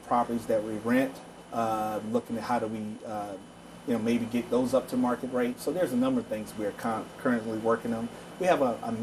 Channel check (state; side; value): identical; both; correlation 1.00